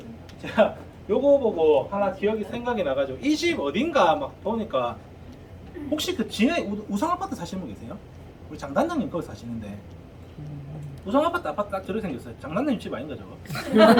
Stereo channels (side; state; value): both; identical; correlation 1.00